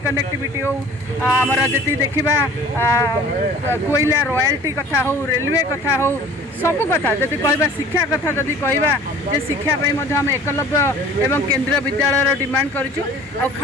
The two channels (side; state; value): both; normal; correlation 0.47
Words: कनेक्टिविटी हो आमर जी देखा कोयला रॉयल्टी कथा हो रेलवे कथा हो सबु कथा जदि कहवा शिक्षा कथा जदि कहवा जे शिक्षापी आम एकलव्य एवं केंद्रीय विद्यालय डिमांड करूँ और